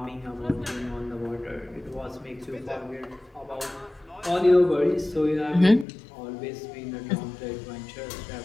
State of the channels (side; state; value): right; drops out; at 5.9 s